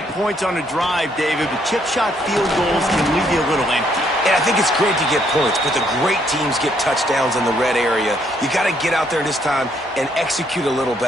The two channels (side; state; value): both; normal; correlation 0.70